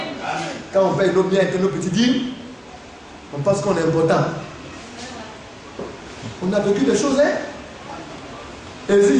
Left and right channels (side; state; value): both; identical; correlation 1.00